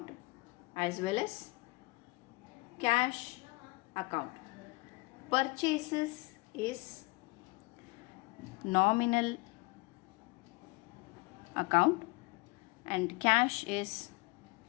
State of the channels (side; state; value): right; quieter; 25.7 dB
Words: as well as cash account. Purchases is nominal account and cash is